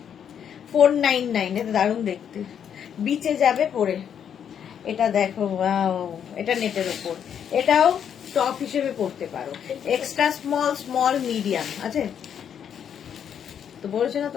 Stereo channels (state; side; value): quieter; right; 8.4 dB